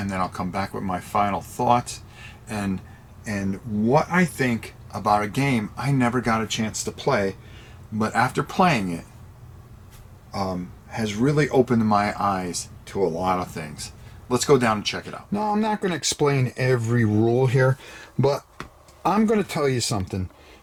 then I'll come back with my final thoughts and what I think about a game I never got a chance to play, but after playing it, has really opened my eyes to a lot of things. Let's go down and check it out. Now, I'm not going to explain every rule here, but I'm going to tell you something.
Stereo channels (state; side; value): identical; both; correlation 1.00